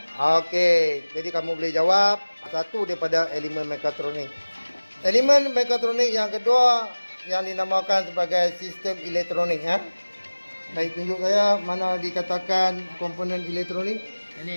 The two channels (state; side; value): inverted; both; correlation -1.00